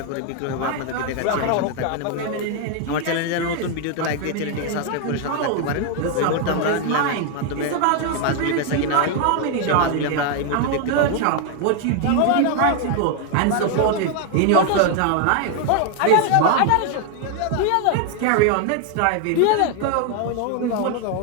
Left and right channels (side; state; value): both; different; correlation 0.00